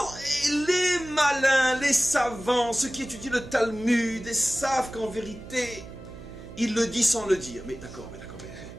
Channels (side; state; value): right; noise; hum, 15 dB below the sound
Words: les malins, les savants, ceux qui étudient le Talmud, ils savent qu'en vérité, il le dit sans le dire. Mais d'accord, mais